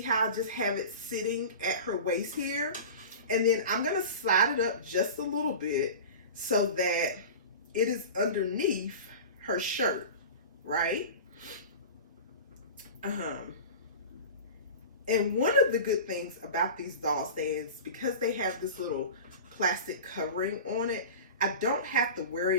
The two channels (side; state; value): both; inverted; correlation -0.33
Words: how I just have it sitting at her waist here. And then I'm going to slide it up just a little bit so that it is underneath her shirt, right? And one of the good things about these doll stands, because they have this little plastic covering on it, I don't have to